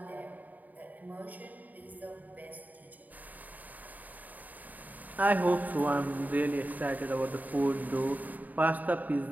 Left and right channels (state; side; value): late; left; 0.080 ms